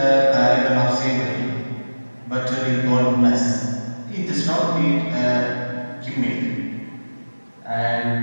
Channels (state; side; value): inverted; both; correlation -1.00